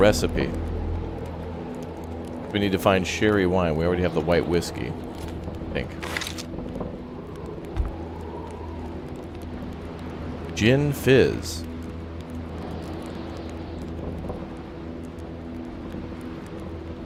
We need to find sherry wine. We already have the white whiskey, I think. Gin fizz.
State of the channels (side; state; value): both; identical; correlation 1.00